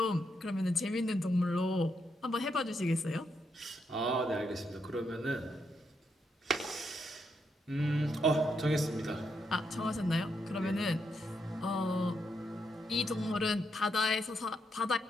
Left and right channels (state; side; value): normal; both; correlation 0.80